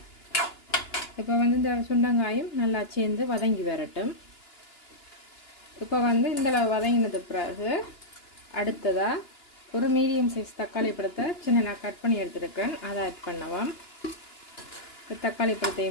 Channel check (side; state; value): right; late; 2.9 ms